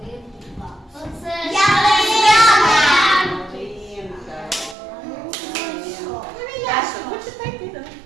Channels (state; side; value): drops out; left; at 4.8 s